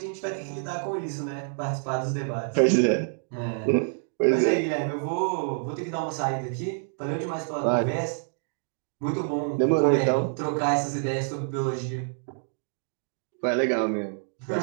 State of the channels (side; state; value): left; silent; digital silence